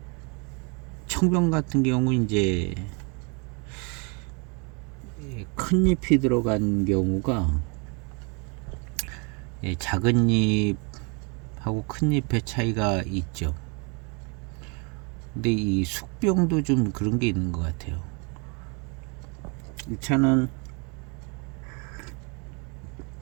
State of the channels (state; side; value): quieter; left; 33.1 dB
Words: 청병 같은 경우 이제 큰 잎이 들어간 경우가 작은 잎하고 큰 잎의 차이가 있죠. 근데 이 숙병도 좀 그런 게 있는 것 같아요. 이 차는